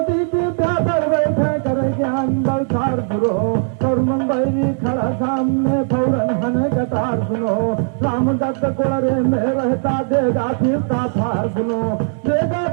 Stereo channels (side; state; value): left; silent; 67 dB below the other